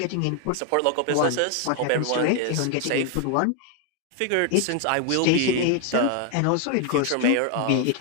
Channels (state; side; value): different; both; correlation 0.00